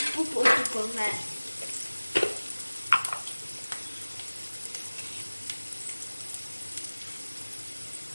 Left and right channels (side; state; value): both; inverted; correlation -1.00